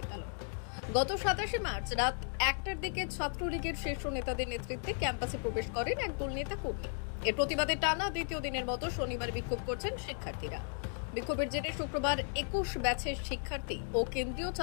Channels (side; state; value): right; silent; 54 dB below the other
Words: গত 27 মার্চ রাত 1টার দিকে ছাত্রলীগের শীর্ষ নেতাদের নেতৃত্বে ক্যাম্পাসে প্রবেশ করেন একদল নেতা কর্মী। এর প্রতিবাদে টানা দ্বিতীয় দিনের মতো শনিবার বিক্ষোভ করছেন শিক্ষার্থীরা। বিক্ষোভের জেরে শুক্রবার 21 ব্যাচের শিক্ষার্থী ও কেন্দ্রীয়